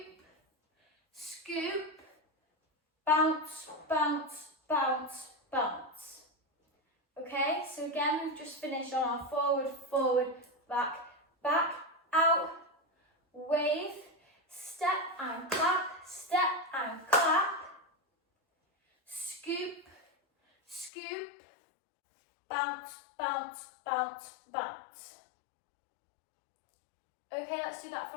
scoop, bounce, bounce, bounce, bounce. Okay, so again, we've just finished on our forward, forward, back, back, out, wave, step and clap, scoop, scoop, bounce, bounce, bounce, bounce. Okay, let's do that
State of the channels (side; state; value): right; drops out; at 20.9 s